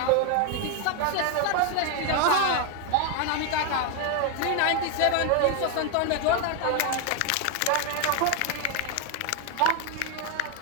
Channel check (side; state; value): both; different; correlation 0.01